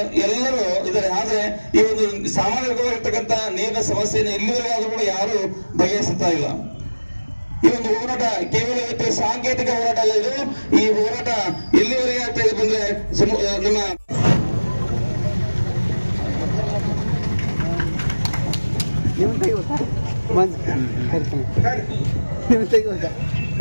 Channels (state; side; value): inverted; both; correlation -1.00